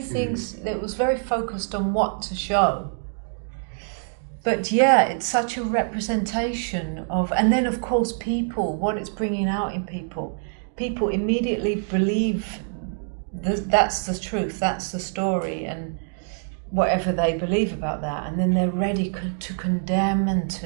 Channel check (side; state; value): left; silent; digital silence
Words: that was very focused on what to show. But yeah, it's such a representation of, and then of course people, what it's bringing out in people. People immediately believe that's the truth, that's the story, and whatever they believe about that, and then they're ready to condemn and